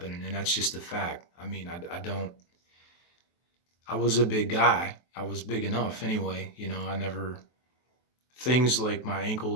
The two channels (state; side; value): late; right; 23 ms